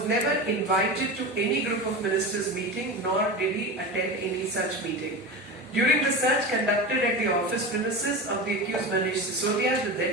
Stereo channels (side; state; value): both; normal; correlation 0.26